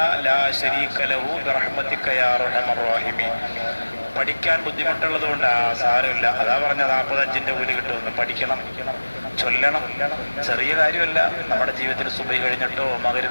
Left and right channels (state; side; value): inverted; both; correlation -1.00